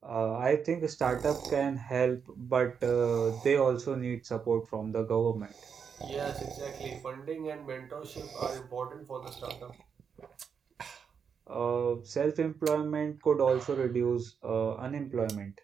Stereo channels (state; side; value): quieter; left; 6.7 dB